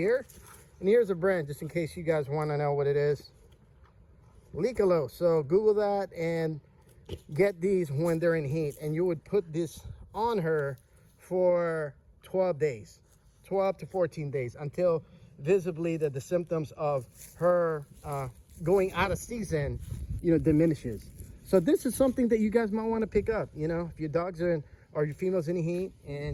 And here's a brand, just in case you guys want to know what it is. Licalo. So Google that and get these when they're in heat. And you would put this on her for 12 days, 12 to 14 days, until visibly that the symptoms of her going out of season, you know, diminishes. So this is something that you guys might want to pick up. You know, if your dogs are in, or your female's in heat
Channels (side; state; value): both; identical; correlation 1.00